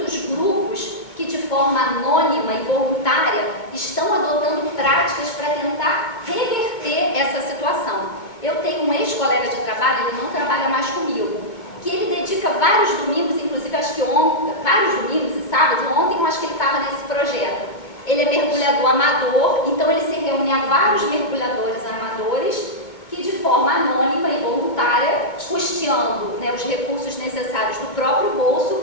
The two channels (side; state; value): right; late; 2.2 ms